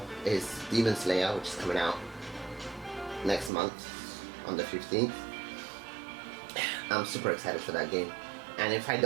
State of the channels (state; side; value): drops out; left; at 3.5 s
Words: is Demon Slayer, which is coming out next month on the 15th. I'm super excited for that game, and if I